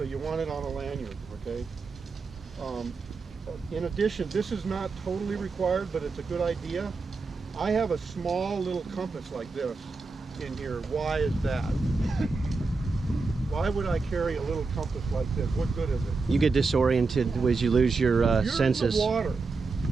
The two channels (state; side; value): quieter; left; 4.1 dB